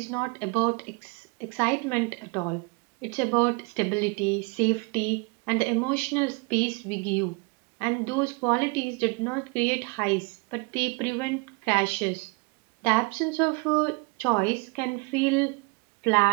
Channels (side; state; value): left; quieter; 30.2 dB